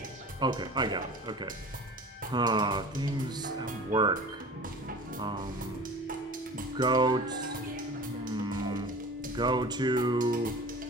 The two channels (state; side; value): normal; both; correlation 0.39